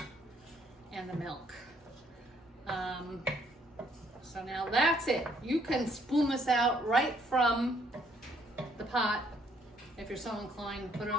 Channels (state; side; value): normal; both; correlation 0.67